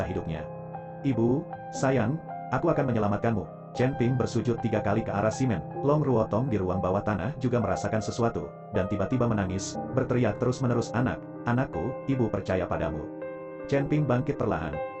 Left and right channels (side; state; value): both; identical; correlation 1.00